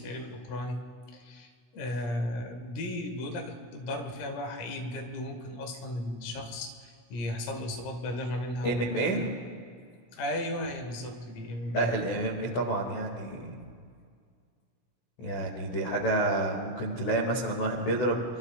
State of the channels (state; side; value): late; right; 17 ms